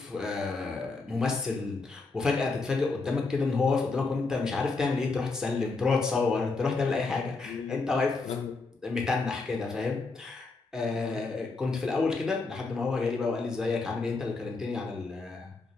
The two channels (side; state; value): right; quieter; 3.9 dB